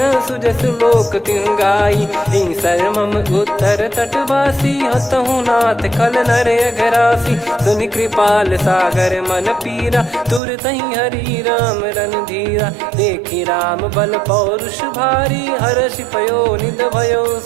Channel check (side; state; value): left; drops out; at 10.4 s